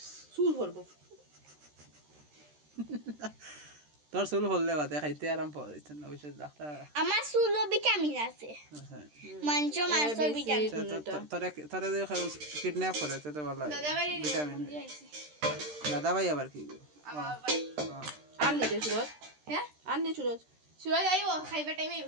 सूल भरबो তোর চুল হললে বাদে খাইতে আরাম পাওয়া যাইতে না ওইসব ডাক্তার আমার চুলো ভিটামিন আছে মাংস মাংস ভিটামিন তোরে যে কিডন্যাপ করে তো ভালো ভিটামিন দাদা ভাই আবার কি आन नहीं दे सूरज হ্যাঁ आन नहीं सूरज সুরজ আইবো খাইবার টাইমে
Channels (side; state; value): left; late; 13 ms